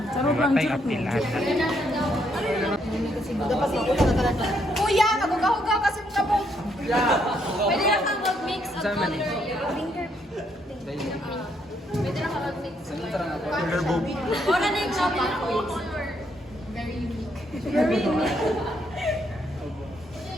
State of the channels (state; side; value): normal; both; correlation 0.73